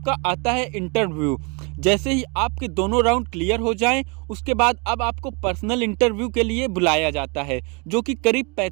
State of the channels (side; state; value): left; quieter; 31.4 dB